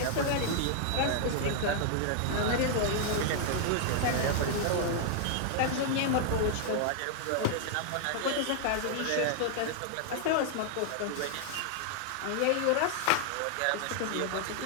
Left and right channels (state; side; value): different; both; correlation 0.00